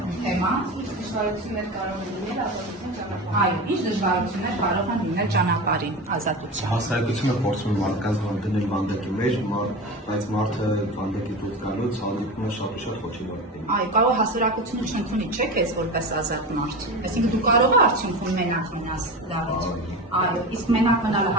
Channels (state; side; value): normal; both; correlation 0.26